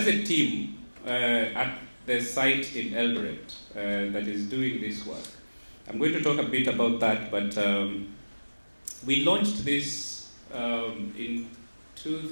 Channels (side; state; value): both; inverted; correlation -1.00